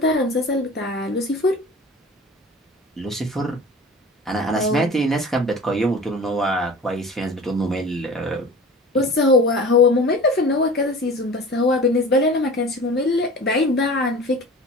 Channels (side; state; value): both; normal; correlation 0.39